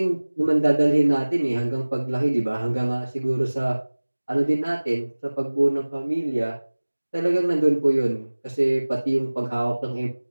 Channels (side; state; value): both; inverted; correlation -1.00